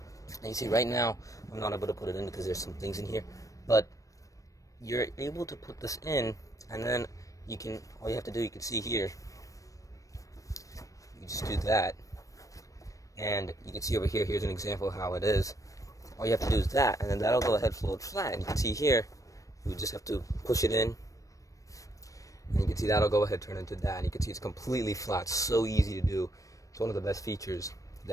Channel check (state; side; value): late; right; 0.16 ms